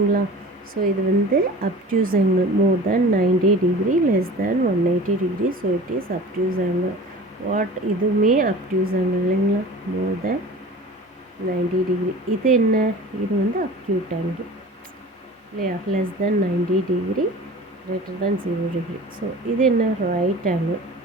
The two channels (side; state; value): both; normal; correlation 0.39